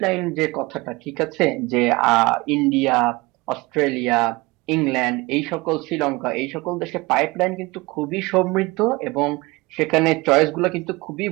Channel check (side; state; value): left; quieter; 22.9 dB